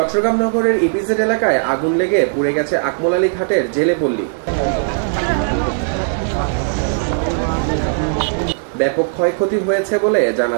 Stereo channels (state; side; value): silent; left; 67 dB below the other